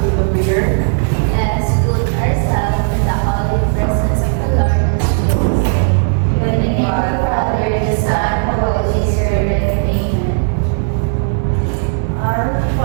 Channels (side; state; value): left; silent; digital silence